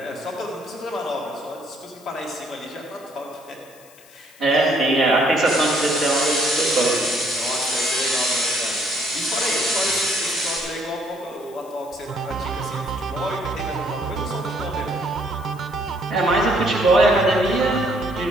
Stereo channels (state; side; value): noise; left; hiss, 24 dB below the sound